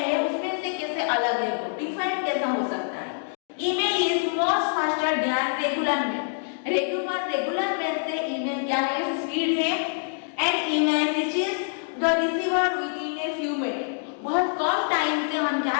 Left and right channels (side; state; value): right; silent; digital silence